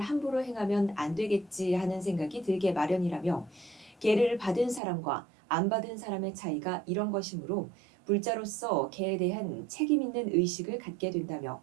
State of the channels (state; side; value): drops out; left; at 4.8 s